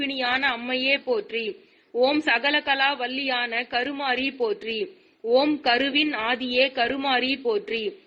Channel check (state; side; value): identical; both; correlation 1.00